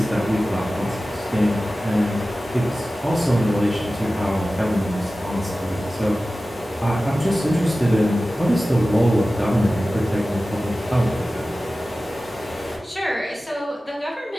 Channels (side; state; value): both; normal; correlation 0.96